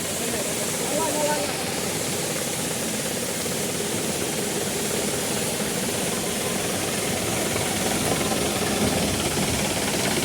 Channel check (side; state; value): both; identical; correlation 1.00